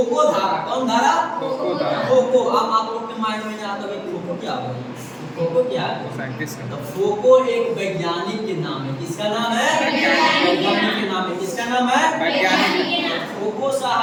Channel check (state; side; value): identical; both; correlation 1.00